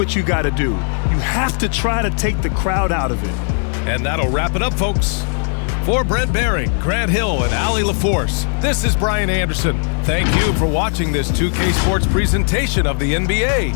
you got to do. You have to try to take the crowd out of it. And that'll wrap it up, folks. For Brent Behring, Grant Hill, and Allie LaForce, this is Brian Anderson. Thank you for watching this 2K Sports presentation of the NBA.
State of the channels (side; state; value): right; silent; digital silence